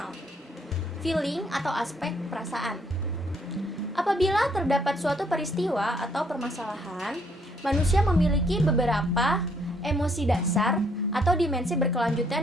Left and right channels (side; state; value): both; normal; correlation 0.68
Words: feeling atau aspek perasaan. Apabila terdapat suatu peristiwa atau permasalahan, manusia memiliki beberapa emosi dasar atau dimensi